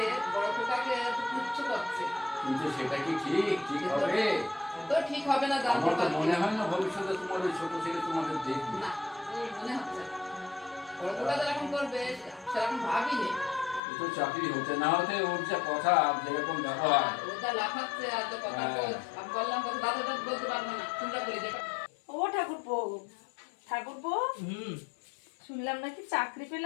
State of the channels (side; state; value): right; drops out; at 13.8 s